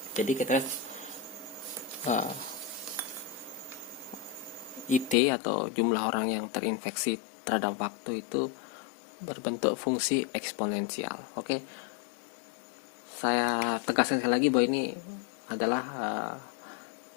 jadi kita IT atau jumlah orang yang terinfeksi terhadap waktu itu berbentuk fungsi eksponensial. Oke, saya tegaskan sekali lagi bahwa ini adalah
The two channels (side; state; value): right; drops out; at 5.2 s